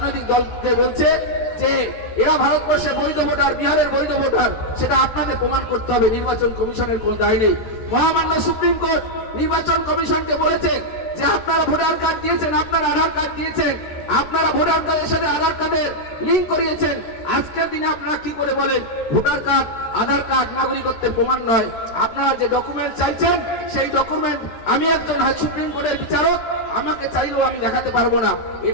দলকে বলছে যে এরা ভারতবর্ষে বৈধ ভোটার, বিহারের বৈধ ভোটার, সেটা আপনাদের প্রমাণ করতে হবে। নির্বাচন কমিশনের কোনো দায় নেই। মহামান্য সুপ্রিম কোর্ট নির্বাচন কমিশনকে বলেছে যে আপনারা ভোটার কার্ড দিয়েছেন, আপনারা আধার কার্ড দিয়েছেন, আপনারা ভোটার কার্ডের সাথে আধার কার্ডের লিঙ্ক করিয়েছেন। আজকের দিনে আপনারা কি করে বলেন ভোটার কার্ড, আধার কার্ড নাগরিকত্বের প্রমাণ নয়? আপনারা যে ডকুমেন্ট চাইছেন সেই ডকুমেন্ট আমি একজন সুপ্রিম কোর্টের বিচারক, আমাকে চাইলেও আমি দেখাতে পারবো না।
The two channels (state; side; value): late; right; 13 ms